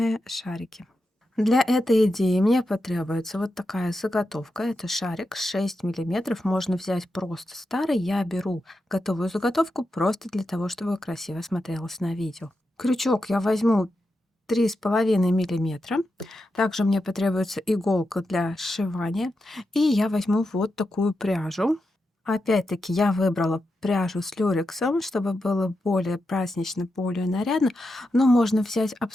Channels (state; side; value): normal; both; correlation 0.88